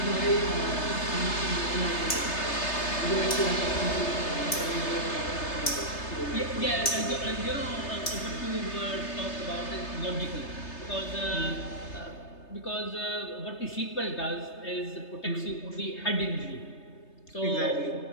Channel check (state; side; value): late; right; 3.3 ms